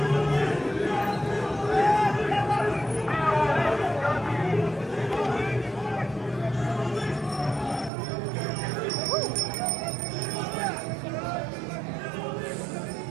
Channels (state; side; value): drops out; left; at 7.9 s